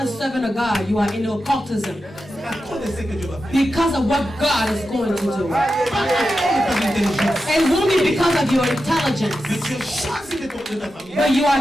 servant of God, you are in occultism. À cause de ce que Dieu va faire. Because of what God is going to do. Pas à cause de ton intelligence. And it won't be because of your intelligence, Mais tu es choisi de ta famille. but you are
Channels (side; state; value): both; normal; correlation 0.90